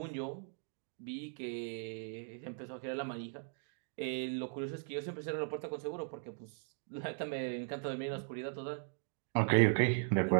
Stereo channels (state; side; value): silent; left; 52 dB below the other